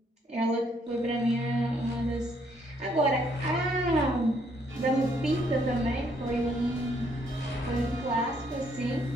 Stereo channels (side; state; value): both; normal; correlation 0.69